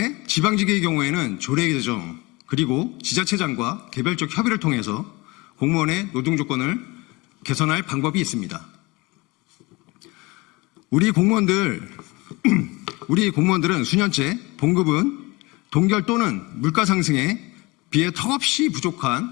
지방직의 경우에는 조례 개정 그리고 지자체장과 개별적 협의를 통해서 공무원의 노동 조건을 개선할 방법이 있습니다. 우리 공무원들은 수년째 봉급은 동결 또는 물가 상승에 비해 턱없이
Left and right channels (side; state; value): right; quieter; 23.9 dB